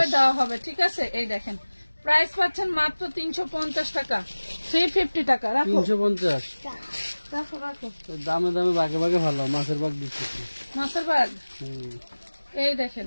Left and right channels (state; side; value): inverted; both; correlation -1.00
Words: দেওয়া হবে, ঠিক আছে। এই দেখেন প্রাইস পাচ্ছেন মাত্র 350 টাকা, 350 টাকা, রাখো 350, রাখো রাখো, দামে দামে ভাগে ভাগে ভালো, মাছের ভাগ দিচ্ছি, মাছের ভাগ। এই